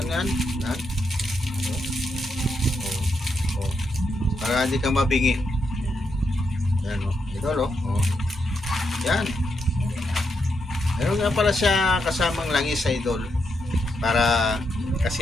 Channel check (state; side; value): normal; both; correlation 0.82